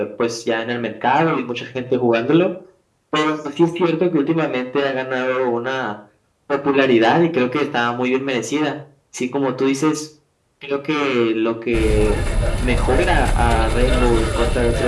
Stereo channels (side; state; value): both; identical; correlation 1.00